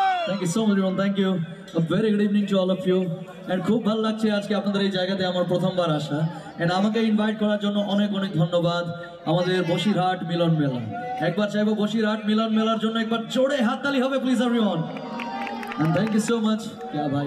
Thank you so much everyone. Thank you. A very good evening to all of you. And খুব ভালো লাগছে আজকে আপনাদের এই জায়গাতে আমার প্রথমবার আসা। And আমাকে ইনভাইট করার জন্য অনেক অনেক ধন্যবাদ আমাদের বসিরহাট মিলন মেলা। একবার চাইবো বসিরহাট মিলন মেলার জন্য একবার জোরে হাততালি হবে please everyone. And thank you so much. क्या भाई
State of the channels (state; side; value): identical; both; correlation 1.00